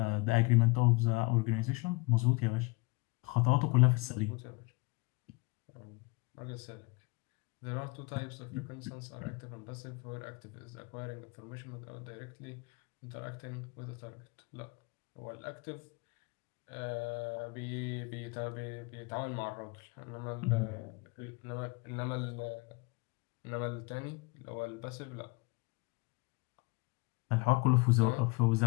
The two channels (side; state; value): right; quieter; 26.5 dB